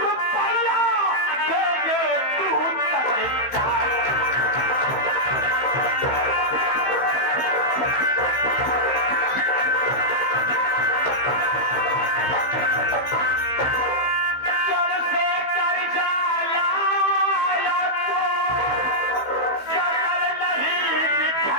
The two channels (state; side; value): late; right; 15 ms